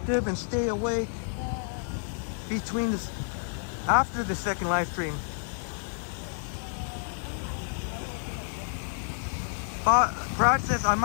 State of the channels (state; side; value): silent; right; 58 dB below the other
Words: and stay awake between this, after the second live stream? Brad says, I